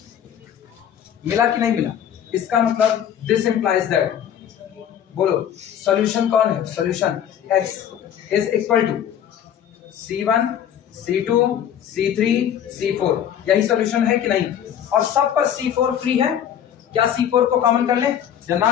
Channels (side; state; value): right; quieter; 9.6 dB